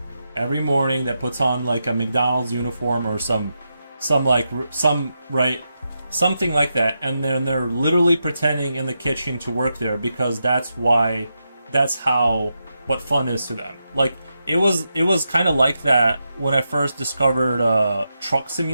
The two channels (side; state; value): both; inverted; correlation -0.87